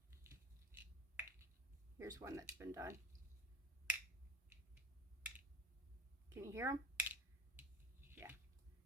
Here's one that's been done. Can you hear them? Yeah.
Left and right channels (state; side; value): normal; both; correlation 0.36